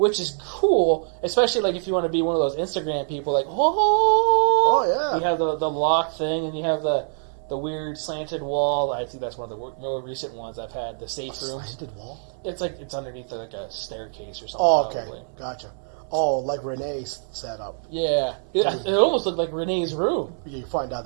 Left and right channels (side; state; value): left; silent; 59 dB below the other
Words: is cool, especially like if you want to be one of those Instagram people, like, Oh yeah. you have the lock thing, and you have the weird slanted wall. I think that's one of the more recent ones I've had. The safe A room. slanted wall. It's like it's underneath like a staircase or something. Oh, okay. Probably. Gotcha. Oh, like Renee's setup. Yeah, it almost looked like Renee's room. You find out